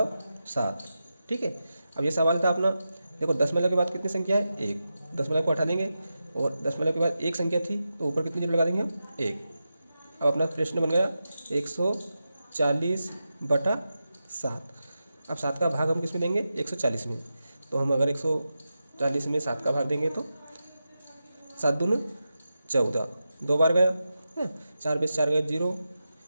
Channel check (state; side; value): inverted; both; correlation -0.90